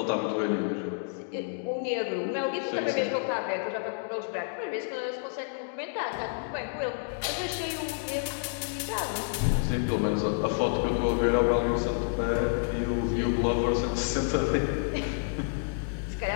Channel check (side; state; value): right; silent; digital silence